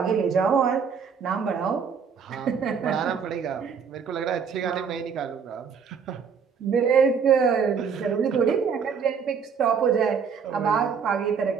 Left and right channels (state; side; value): quieter; left; 6.4 dB